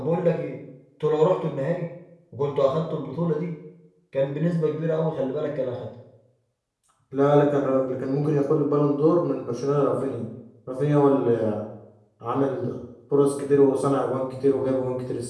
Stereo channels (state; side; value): identical; both; correlation 1.00